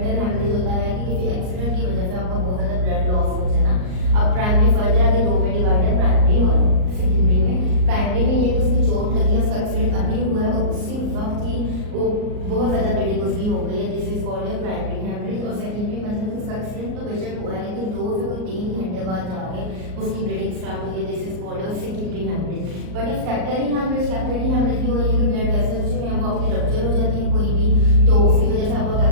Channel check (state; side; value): late; left; 38 ms